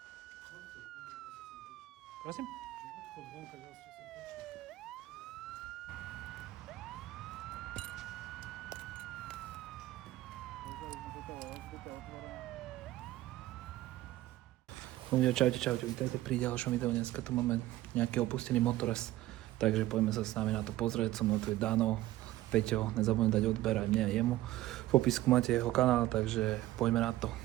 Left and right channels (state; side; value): quieter; left; 15.8 dB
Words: Prosím? Odchod vonka, ja som prešiel. Ľudia, čaute, vítajte pri ďalšom videu. Dneska tu máme nejaký opustený motorez, takže poďme sa s nami na to pozrieť. So mnou tu je Dano, Peťo, nezabudnite dať odber aj mne a jemu. V popisku máte jeho kanál, takže poďme na to,